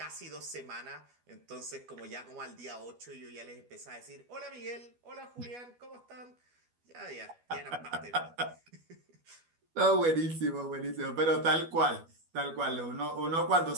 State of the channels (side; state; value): left; late; 12 ms